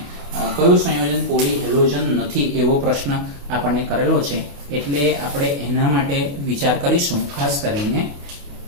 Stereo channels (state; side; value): late; left; 28 ms